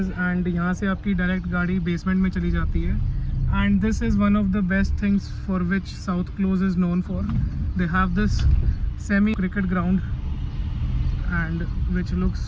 and यहाँ से आपकी direct गाड़ी basement में चली जाती है. And this is one of the best things for which South Close is known for. They have this semi cricket ground and which looks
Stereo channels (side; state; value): both; identical; correlation 1.00